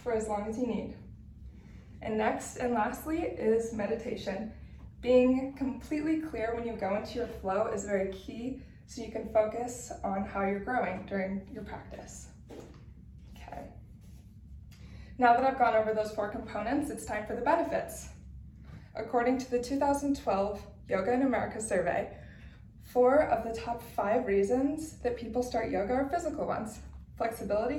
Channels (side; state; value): both; identical; correlation 1.00